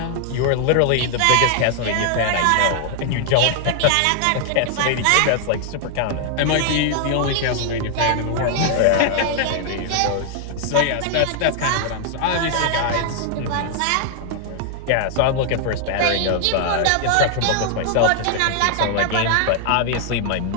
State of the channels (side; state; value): both; different; correlation 0.00